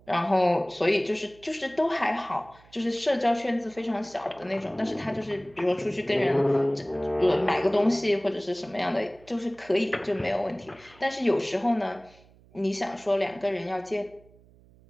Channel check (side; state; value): right; noise; hum, 27 dB below the sound